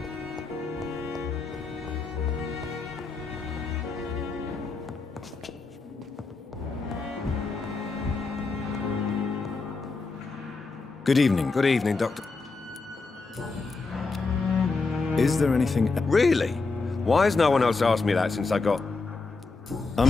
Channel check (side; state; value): right; quieter; 4.0 dB